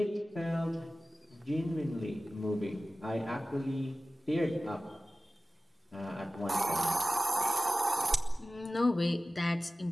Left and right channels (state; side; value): normal; both; correlation 0.96